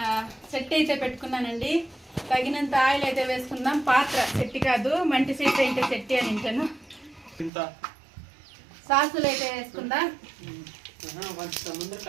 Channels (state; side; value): drops out; left; at 7.5 s